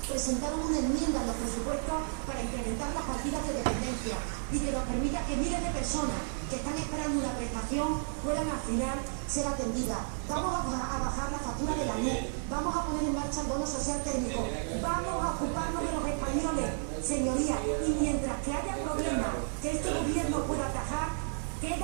presentaron una enmienda en los presupuestos para incrementar las partidas de dependencia y que nos permita que miles de personas que están esperando una prestación puedan al final ser atendidas. Vamos a bajar la factura de la luz, vamos a poner en marcha el bono social técnico, vamos a ocuparnos de los españoles, señorías, y mientras que haya problemas que este gobierno pueda atajar,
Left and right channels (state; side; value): silent; left; digital silence